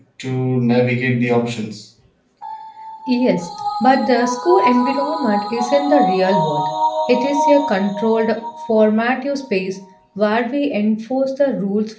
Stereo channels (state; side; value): identical; both; correlation 1.00